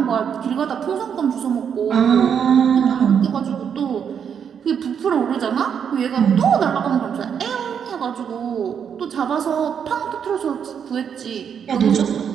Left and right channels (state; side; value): quieter; left; 7.7 dB